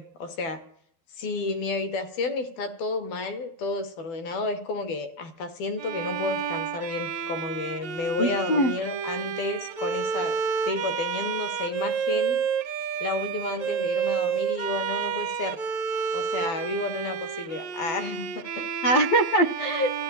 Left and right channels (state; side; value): late; right; 12 ms